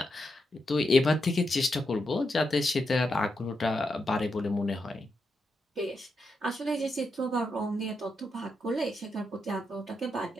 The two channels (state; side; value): normal; both; correlation 0.84